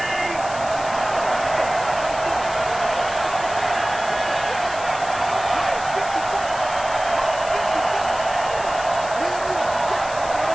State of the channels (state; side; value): noise; left; hiss, 13 dB below the sound